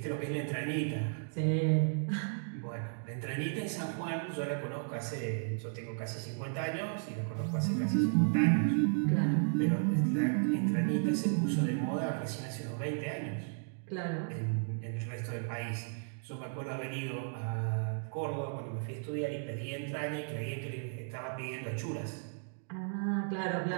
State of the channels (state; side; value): silent; left; digital silence